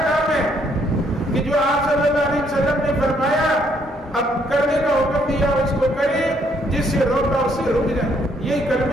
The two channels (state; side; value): normal; both; correlation 0.69